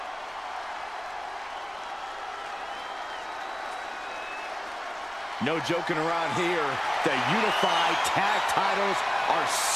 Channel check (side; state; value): left; noise; rumble, 29 dB below the sound